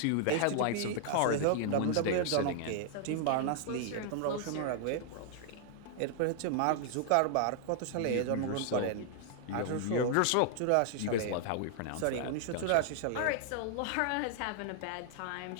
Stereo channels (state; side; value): different; both; correlation 0.00